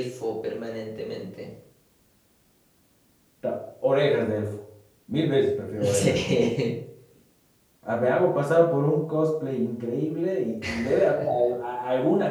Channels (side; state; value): both; identical; correlation 1.00